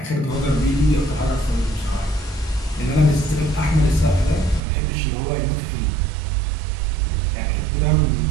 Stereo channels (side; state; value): left; drops out; at 4.6 s